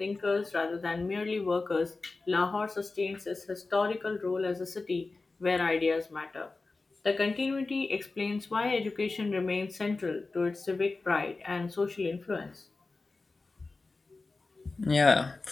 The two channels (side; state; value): right; quieter; 3.6 dB